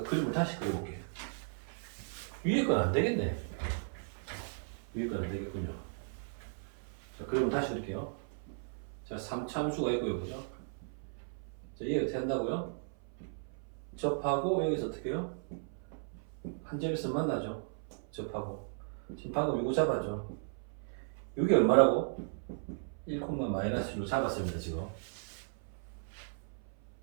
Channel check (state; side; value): silent; left; 54 dB below the other